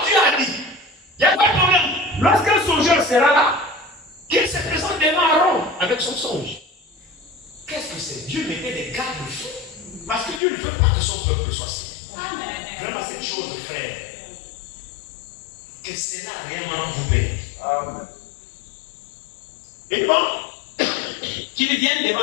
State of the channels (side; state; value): right; drops out; at 10.4 s